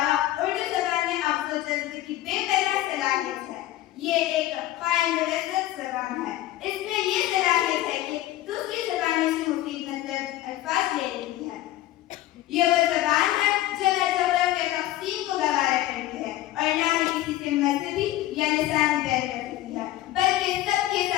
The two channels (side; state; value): right; quieter; 15.1 dB